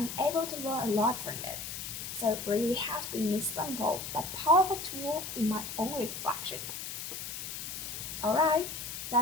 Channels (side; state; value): left; noise; hiss, 7 dB below the sound